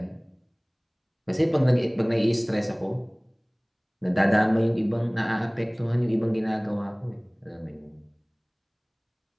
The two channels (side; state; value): both; identical; correlation 1.00